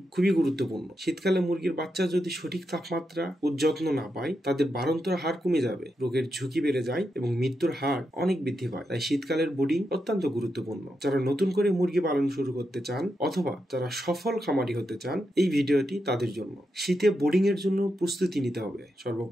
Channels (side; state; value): both; normal; correlation 0.85